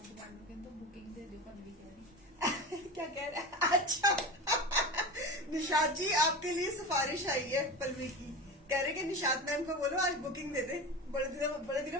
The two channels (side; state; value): both; normal; correlation 0.27